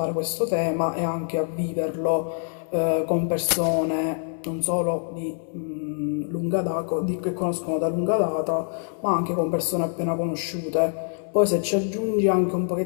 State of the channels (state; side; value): silent; right; digital silence